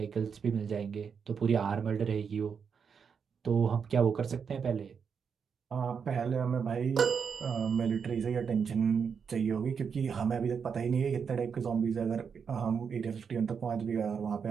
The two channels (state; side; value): quieter; left; 6.5 dB